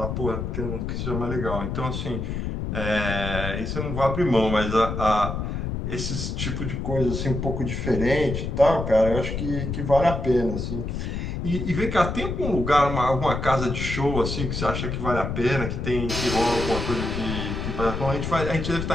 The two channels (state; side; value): noise; left; rumble, 3 dB below the sound